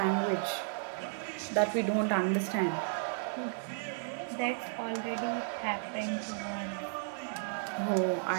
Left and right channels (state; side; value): silent; left; digital silence